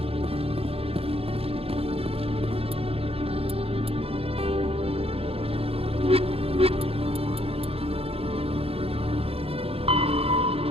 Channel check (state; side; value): late; left; 0.28 ms